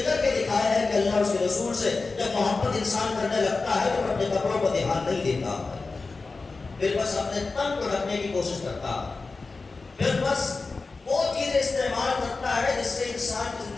کر کے دکھایا ہے کہ اللہ اس کے رسول سے جب محبت انسان کرنے لگتا ہے تو اپنے کپڑوں پر دھیان نہیں دیتا, پھر بس اپنے تن کو ڈھکنے کی کوشش کرتا, پھر بس وہ چیزیں استعمال کرتا ہے جس سے انسان کی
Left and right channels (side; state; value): right; quieter; 3.9 dB